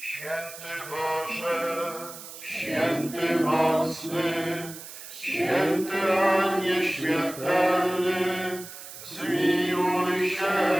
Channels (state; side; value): noise; right; hiss, 13 dB below the sound